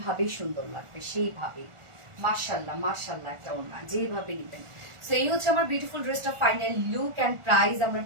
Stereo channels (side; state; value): left; late; 1.4 ms